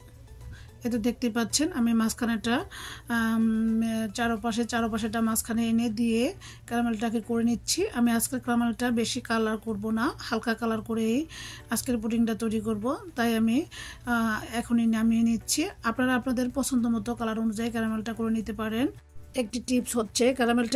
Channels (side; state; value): both; identical; correlation 1.00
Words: এতে দেখতে পাচ্ছেন আমি মাঝখানেটা চারপাশেটা মাঝখানে এনে দিয়ে ক্যারামেলটাকে করে নিচ্ছি। আমি আজকের ক্যারামেলটা বেশি কালার করব না, হালকা কালার করেই আজকের পুডিংটা তৈরি করব, তাই আমি এখনই নামিয়ে নিচ্ছি। আপনারা আপনাদের পছন্দ মতো কালার অনুযায়ী ক্যারামেলটা করে নিতে পারেন। একটি টিপস হচ্ছে